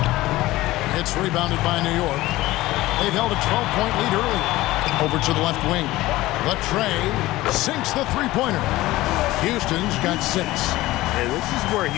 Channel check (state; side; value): quieter; right; 17.6 dB